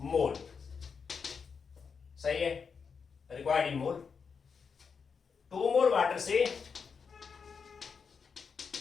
मोल। सही है, required in mole. 2 mole water से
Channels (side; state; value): right; quieter; 5.9 dB